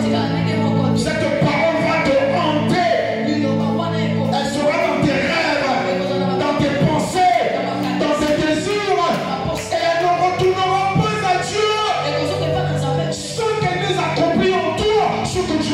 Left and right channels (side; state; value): both; identical; correlation 1.00